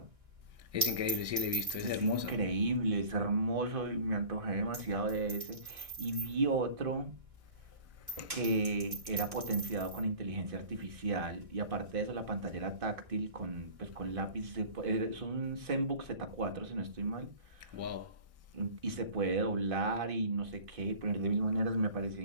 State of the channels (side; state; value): left; late; 1.6 ms